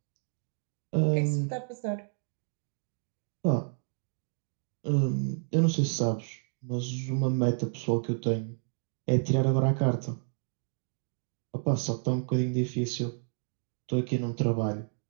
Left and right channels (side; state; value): left; silent; 56 dB below the other